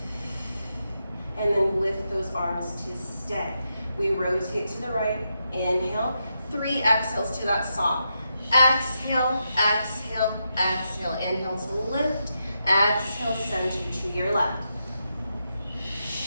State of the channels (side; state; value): both; inverted; correlation -0.85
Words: And then lift those arms to stay. We rotate to the right. Inhale. 3 exhales to that saw. Exhale, exhale, exhale. Inhale to lift. Exhale, center to your left.